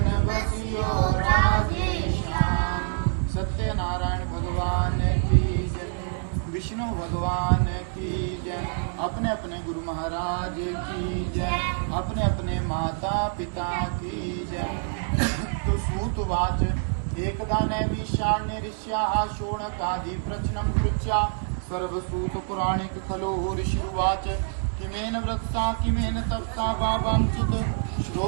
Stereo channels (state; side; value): silent; left; 61 dB below the other